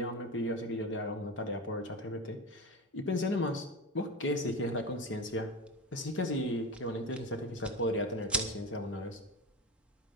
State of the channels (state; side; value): normal; both; correlation 0.23